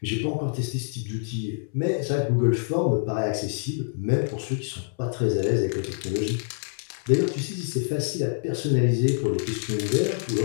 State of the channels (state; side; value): silent; right; 61 dB below the other